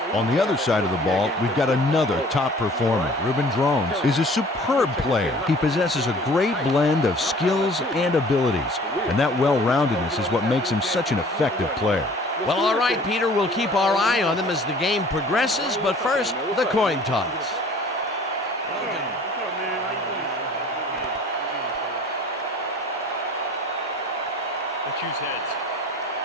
On the other side of the ball, we've got another top performer. Ruben Drones is a superb player. He possesses a great blend of skills and abilities, and that well-roundedness is what makes him such an effective player. Well, all right, Peter, we'll keep our eye on them as the game progresses, but first, the coin toss. Let's choose heads.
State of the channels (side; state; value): both; normal; correlation 0.50